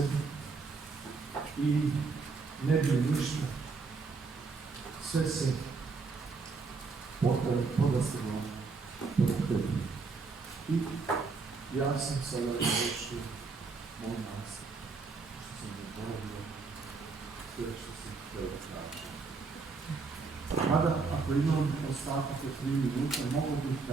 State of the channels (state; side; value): quieter; left; 4.5 dB